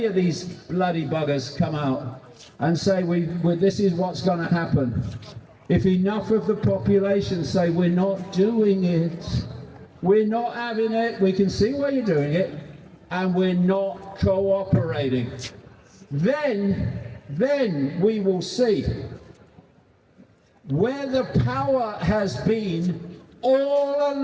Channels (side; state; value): both; identical; correlation 1.00